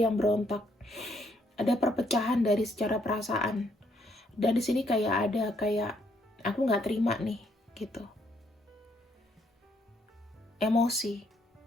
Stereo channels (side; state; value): both; normal; correlation 0.71